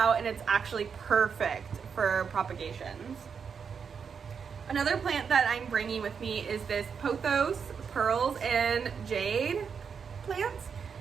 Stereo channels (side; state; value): left; quieter; 6.4 dB